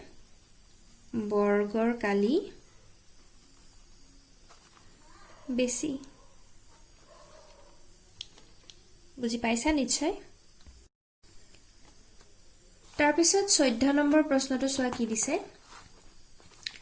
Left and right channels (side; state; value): both; identical; correlation 1.00